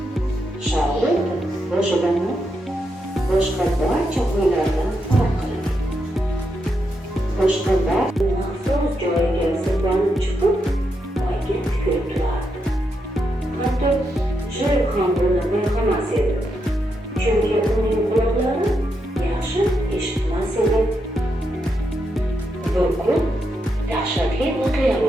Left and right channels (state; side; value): normal; both; correlation 0.83